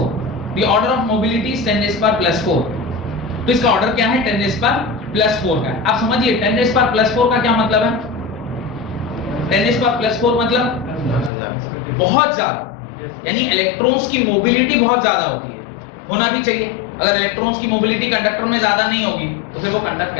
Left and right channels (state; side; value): drops out; right; at 11.3 s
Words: The order of mobility is 10 raised per plus 4. तो इसका ऑर्डर क्या है? 10 raised per plus 4 का। आप समझिए 10 raised per plus 4 का क्या मतलब है? 10 raised per plus 4 मतलब बहुत ज्यादा, यानी इलेक्ट्रॉन्स की मोबिलिटी बहुत ज्यादा होती है, होना भी चाहिए। अगर इलेक्ट्रॉन्स की मोबिलिटी कंडक्टर में ज्यादा नहीं होगी तो फिर वो कंडक्ट